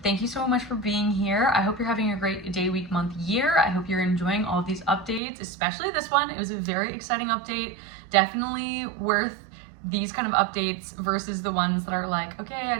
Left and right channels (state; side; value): drops out; left; at 5.2 s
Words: Thank you so much for being here. I hope you're having a great day, week, month, year. I hope you're enjoying all of these updates, especially this one. It was a very exciting update. Definitely worth these kind of updates versus the ones that are like, okay, I